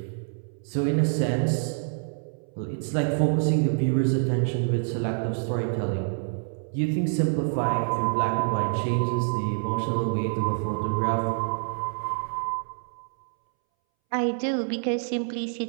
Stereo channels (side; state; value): left; silent; 60 dB below the other